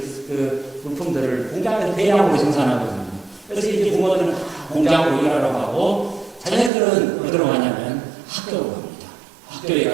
물품들을 공장에서 대량으로 생산하거든요. 그래서 이제 부모들은 공장으로 일하러 가고 자녀들은 어디로 가냐면 학교로 갑니다. 학교에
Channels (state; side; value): drops out; left; at 6.7 s